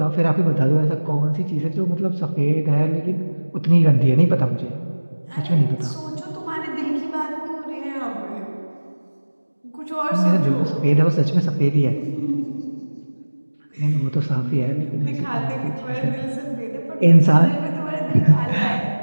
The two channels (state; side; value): inverted; both; correlation -1.00